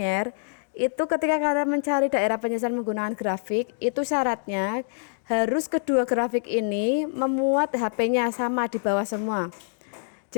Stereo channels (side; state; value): right; silent; digital silence